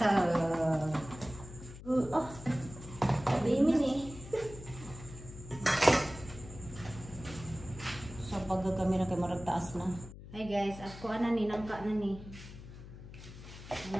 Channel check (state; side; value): noise; left; hum, 14 dB below the sound